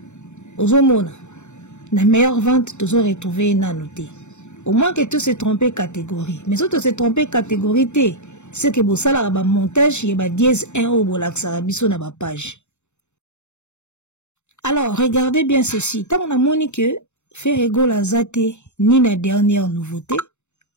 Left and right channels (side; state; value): right; late; 0.83 ms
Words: Au moins, la meilleure vente, tu as retrouvé une noté. Au moins que tu se trompé catégorie. Mais si tu se trompé catégorie, c'est que vous savez, le montage, il y a dièse 1 au bolaxarabiso na ba page. Alors, regardez bien ceci. Tant on a moni que faire égale à zate, ni la dernière nouveauté,